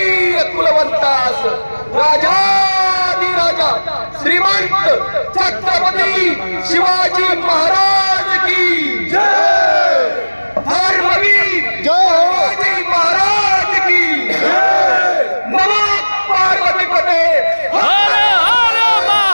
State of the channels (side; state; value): both; inverted; correlation -1.00